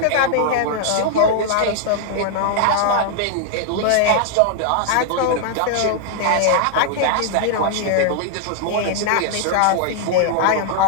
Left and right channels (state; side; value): different; both; correlation -0.01